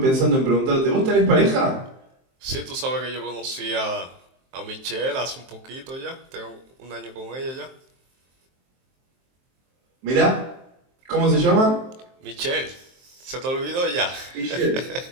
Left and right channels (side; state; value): left; late; 23 ms